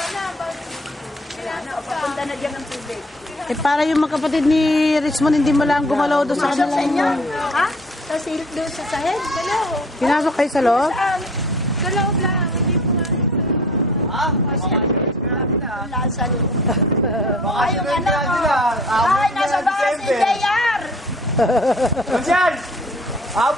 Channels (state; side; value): normal; both; correlation 0.51